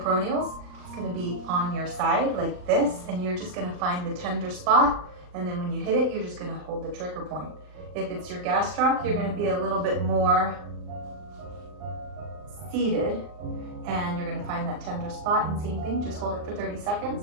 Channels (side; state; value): left; late; 39 ms